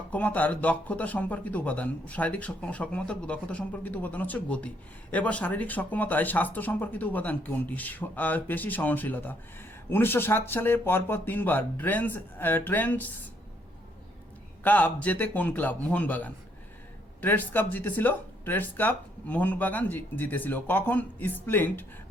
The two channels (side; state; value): both; normal; correlation 0.70